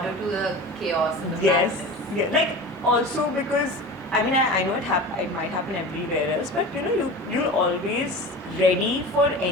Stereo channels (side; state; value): both; normal; correlation 0.33